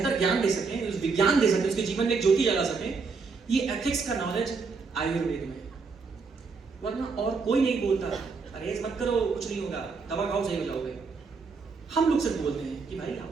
ज्ञान दे सकें, उस विज्ञान दे सकें, उसके जीवन में एक ज्योति जला सकें। ये एथिक्स का नॉलेज आयुर्वेद में, वरना और कोई नहीं बोलता परहेज मत करो कुछ नहीं होगा, दवा खाओ सही हो जाओगे। हम लोग सिर्फ बोलते हैं कि भाई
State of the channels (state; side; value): quieter; left; 4.7 dB